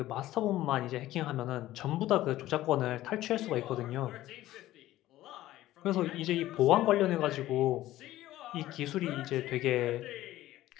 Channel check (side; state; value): right; quieter; 15.2 dB